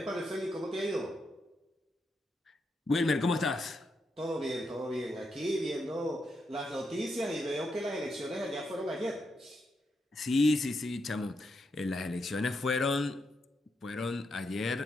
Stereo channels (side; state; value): both; normal; correlation 0.82